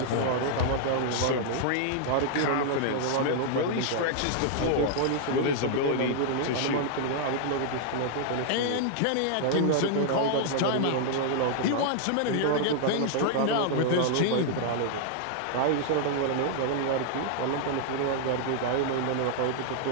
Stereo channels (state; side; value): different; both; correlation -0.01